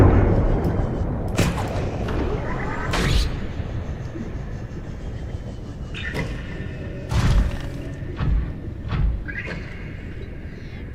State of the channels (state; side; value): identical; both; correlation 1.00